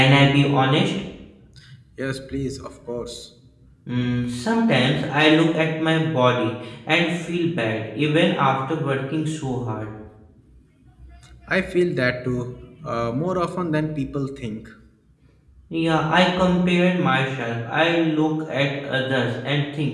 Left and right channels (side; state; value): both; identical; correlation 1.00